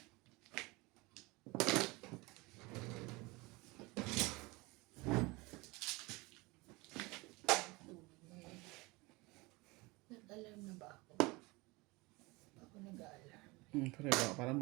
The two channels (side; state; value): left; quieter; 24.0 dB